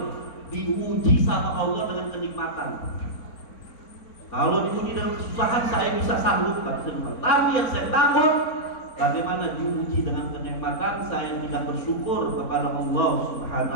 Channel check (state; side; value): late; right; 4.0 ms